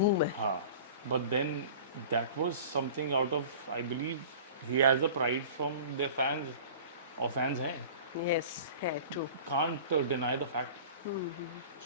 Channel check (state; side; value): inverted; both; correlation -0.41